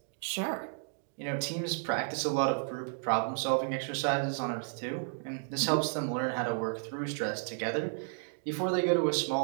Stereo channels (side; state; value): left; silent; digital silence